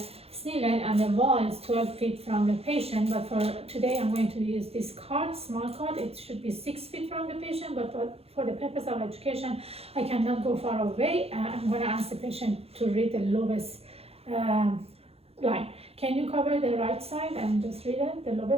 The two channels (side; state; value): left; late; 0.29 ms